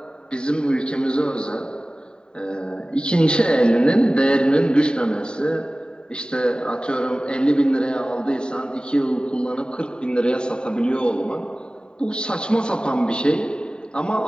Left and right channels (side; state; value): right; late; 0.048 ms